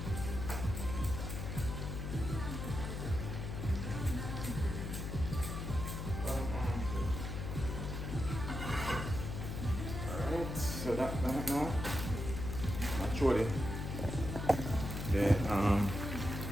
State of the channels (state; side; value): noise; left; hum, 4 dB below the sound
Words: Alright, so that now. Actually, the